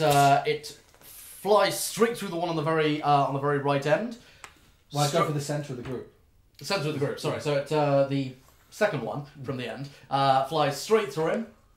flies straight through the one on the very right end. Well, I go for the centre of the group. The centre of the group. Sorry. So it the second one from the end flies straight through him,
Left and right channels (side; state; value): both; identical; correlation 1.00